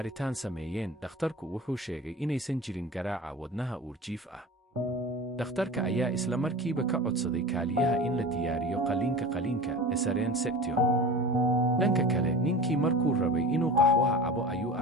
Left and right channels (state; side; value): normal; both; correlation 0.34